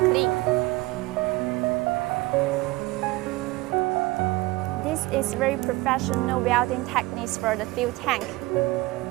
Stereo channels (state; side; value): quieter; left; 20.9 dB